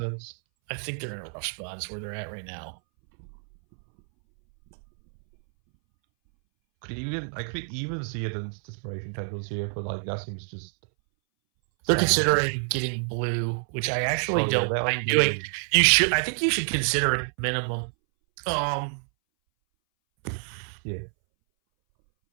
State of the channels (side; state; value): left; silent; 60 dB below the other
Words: I think they're in a rough spot. Is where they're at right now. I could even see it in Desperation Tendrils here, but like that seems just. They're considering getting blue, which I actually don't mind doing. You should. I think you should consider it minimum. Yeah.